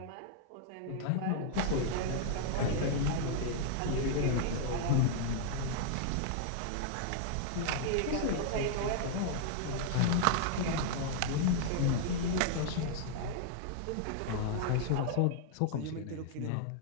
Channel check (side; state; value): both; different; correlation -0.01